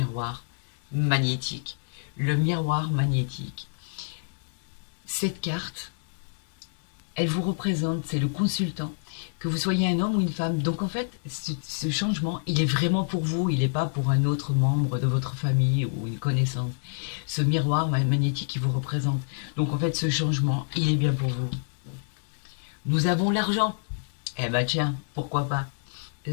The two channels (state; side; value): silent; right; digital silence